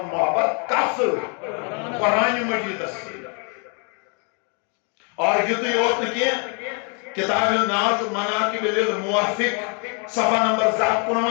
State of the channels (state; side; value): quieter; right; 36.7 dB